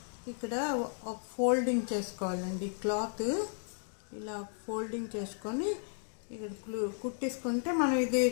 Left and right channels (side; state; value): right; silent; 55 dB below the other